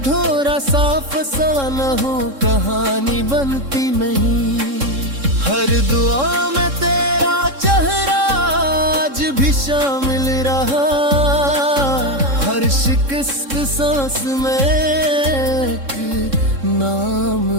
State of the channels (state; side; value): late; left; 3.7 ms